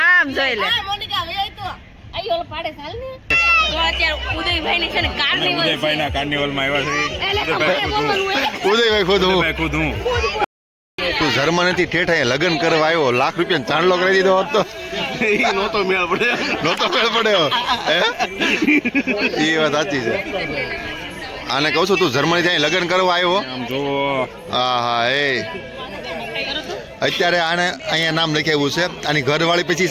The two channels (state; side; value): identical; both; correlation 1.00